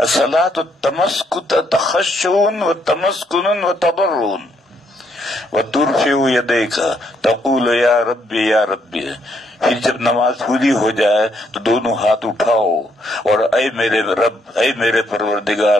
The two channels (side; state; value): both; normal; correlation 0.73